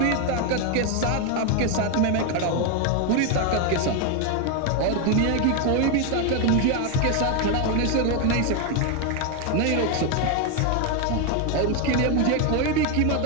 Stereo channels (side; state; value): both; different; correlation 0.01